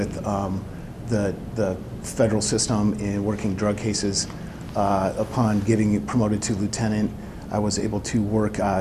the federal system in working drug cases. Upon getting promoted to lieutenant, I was able to work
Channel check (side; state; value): both; identical; correlation 1.00